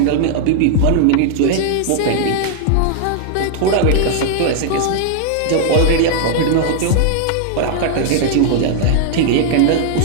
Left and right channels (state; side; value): different; both; correlation 0.00